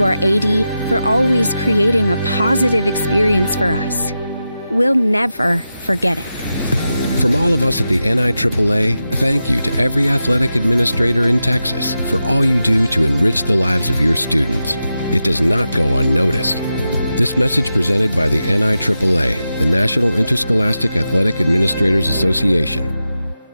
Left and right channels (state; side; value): inverted; both; correlation -0.90